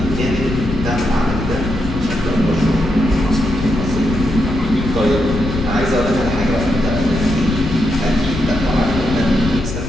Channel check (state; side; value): noise; left; rumble, 5 dB below the sound